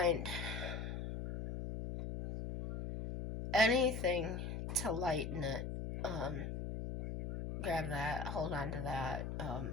anything to lighten it, grab that, hold on to that.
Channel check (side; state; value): left; noise; hum, 4 dB below the sound